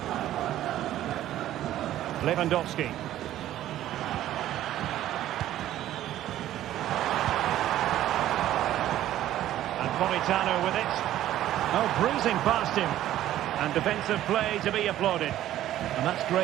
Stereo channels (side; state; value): left; quieter; 13.1 dB